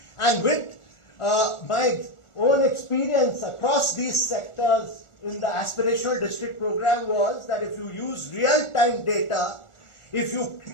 And with my own experience across these sectors in the aspirational district program was that if you use real-time data, if you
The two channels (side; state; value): right; late; 1.4 ms